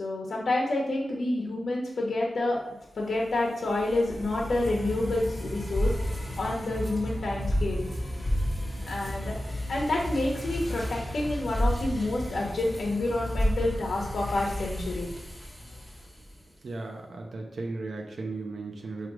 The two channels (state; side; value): normal; both; correlation 0.93